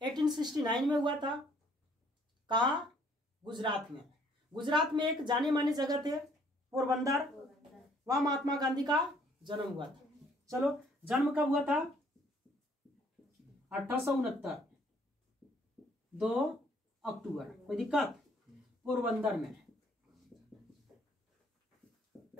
1869 में हुआ था। कहाँ? गुजरात में। गुजरात में एक जाने माने जगह थे पोरबंदर, वहां महात्मा गांधी का जन्म हुआ था। चलो, जन्म कब हुआ था? 1869 2 अक्टूबर। कोई दिक्कत? पोरबंदर में,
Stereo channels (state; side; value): normal; both; correlation 0.62